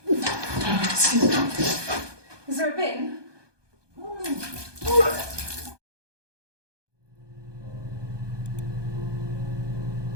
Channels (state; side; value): late; left; 1.2 ms